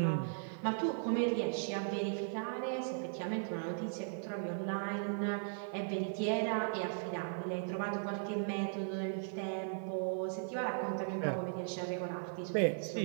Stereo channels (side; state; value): left; silent; 53 dB below the other